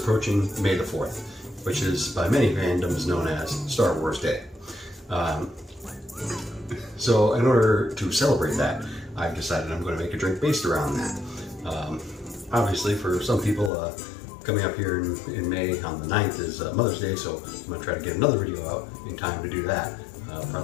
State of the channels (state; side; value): drops out; right; at 13.7 s